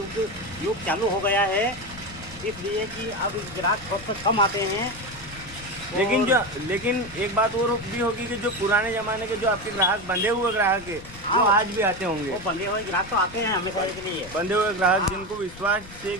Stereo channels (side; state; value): left; noise; rumble, 16 dB below the sound